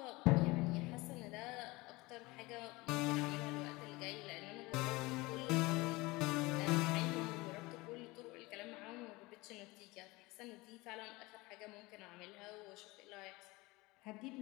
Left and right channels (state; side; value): quieter; right; 22.4 dB